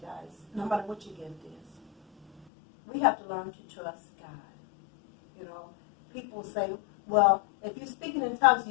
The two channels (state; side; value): drops out; right; at 2.5 s